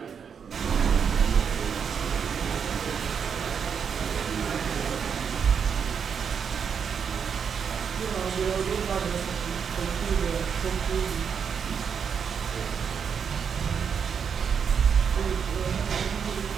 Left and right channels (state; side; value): quieter; left; 6.9 dB